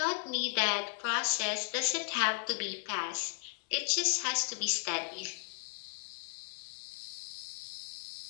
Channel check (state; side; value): silent; right; digital silence